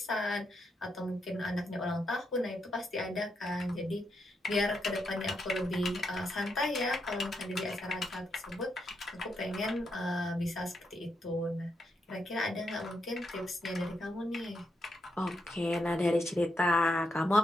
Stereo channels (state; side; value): normal; both; correlation 0.81